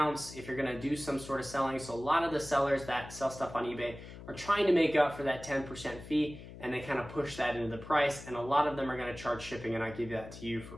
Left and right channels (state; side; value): noise; left; hum, 14 dB below the sound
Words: if you're going to do some sort of selling. So a lot of the sellers that sell stuff on eBay are trying to make up for that 10% fee, and they kind of push that into the price, and a lot of them are going to charge shipping, and I give that to you for